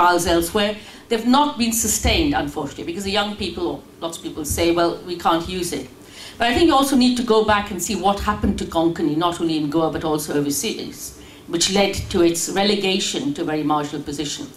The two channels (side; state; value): both; identical; correlation 1.00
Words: elsewhere. They've not been sustained, unfortunately, because the young people, or lots of people say, well, we can't use it. But I think you also need to go back and see what happened to Konkani, not only in Goa, but also overseas, which led to its relegation to a very marginal position.